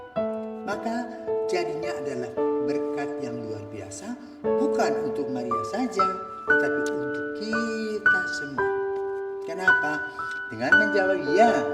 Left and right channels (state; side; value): identical; both; correlation 1.00